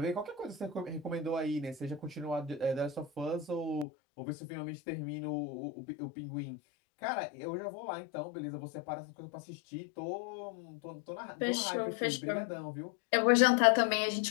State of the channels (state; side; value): drops out; right; at 3.9 s